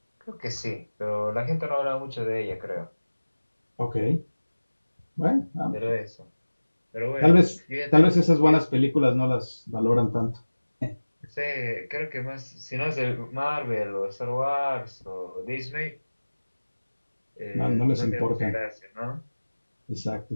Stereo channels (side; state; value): both; inverted; correlation -1.00